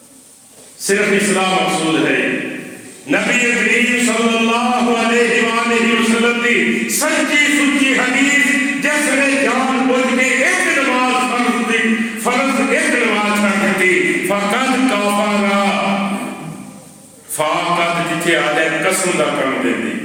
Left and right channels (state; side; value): identical; both; correlation 1.00